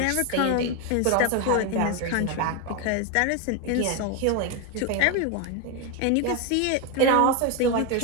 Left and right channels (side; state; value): both; different; correlation 0.02